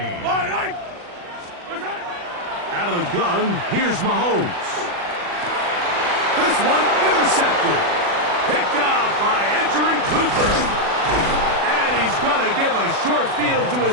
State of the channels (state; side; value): late; left; 40 ms